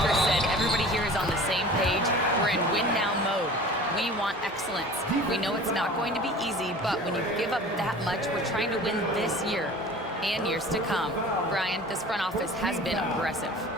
said everybody here is on the same page. We're in win-now mode. We want excellence. We know it's not going to be easy, but when you give up that much, we're trying to win this year and years to come. Brian, this front office has been aggressive.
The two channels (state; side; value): normal; both; correlation 0.42